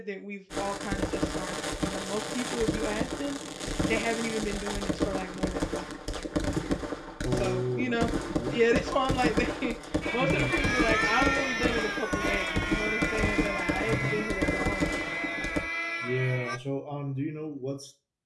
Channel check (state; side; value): identical; both; correlation 1.00